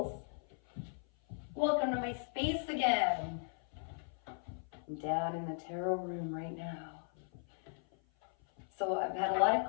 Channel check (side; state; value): right; silent; 53 dB below the other